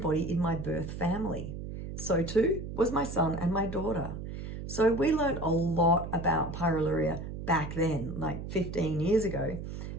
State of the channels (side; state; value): right; noise; hum, 8 dB below the sound